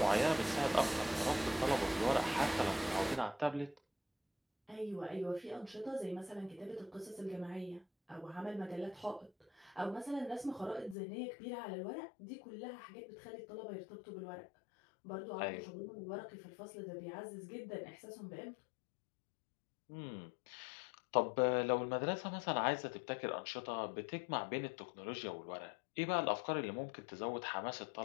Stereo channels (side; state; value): right; drops out; at 11.0 s